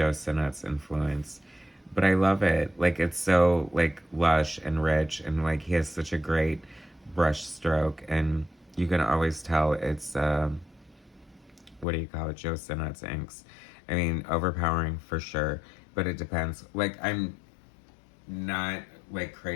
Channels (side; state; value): right; drops out; at 11.9 s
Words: Sinnott's influence. But I love it. Like, it's so, like, lush and rich, and, like, he has such a great brush stroke, and you can always tell it's, Joe Sinnott's inks. I mean, overpowering for sure, but it depends. Like, I'm not, like,